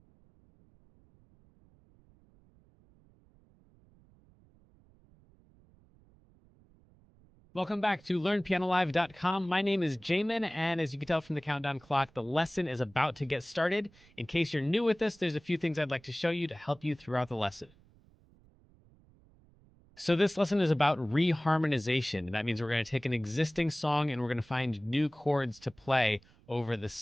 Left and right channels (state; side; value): noise; right; rumble, 29 dB below the sound